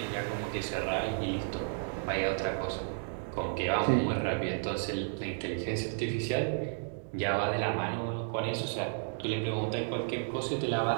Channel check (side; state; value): left; silent; digital silence